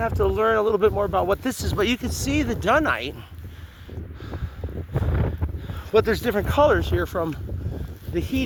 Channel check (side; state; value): both; identical; correlation 1.00